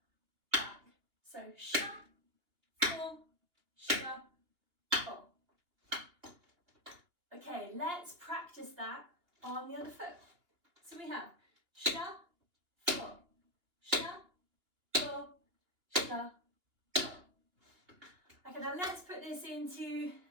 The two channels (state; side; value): late; left; 2.8 ms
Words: back. So shuffle, shuffle. Okay, let's practice that on the other foot. So we have shuffle, shuffle, shuffle. Okay, now let's put this into